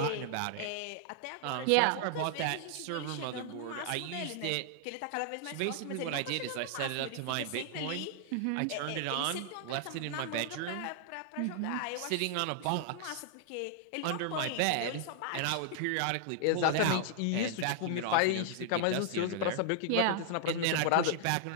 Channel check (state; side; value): different; both; correlation -0.01